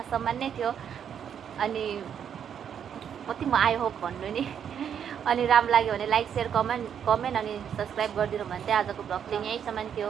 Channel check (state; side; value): quieter; left; 8.4 dB